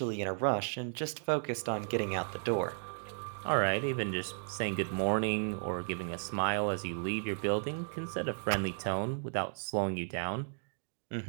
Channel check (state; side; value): silent; left; digital silence